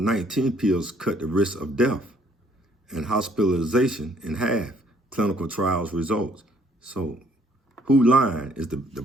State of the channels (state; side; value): normal; both; correlation 0.64